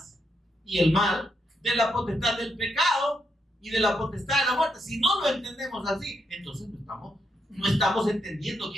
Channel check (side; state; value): both; normal; correlation 0.80